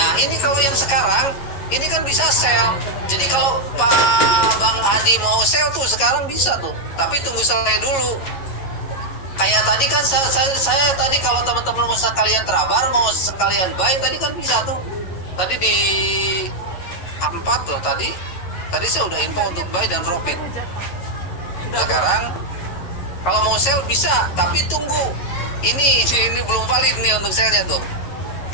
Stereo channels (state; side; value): late; right; 11 ms